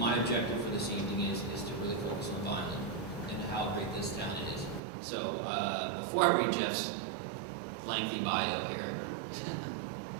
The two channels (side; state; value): left; drops out; at 4.8 s